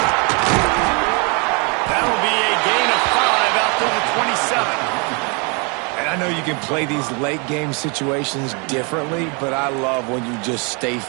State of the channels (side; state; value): left; quieter; 33.1 dB